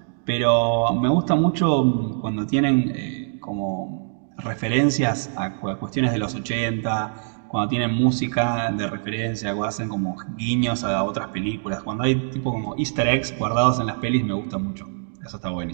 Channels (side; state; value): left; silent; digital silence